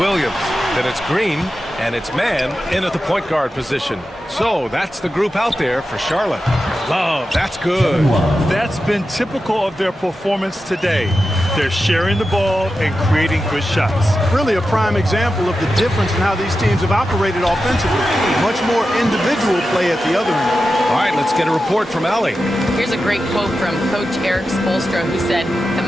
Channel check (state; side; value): normal; both; correlation 0.91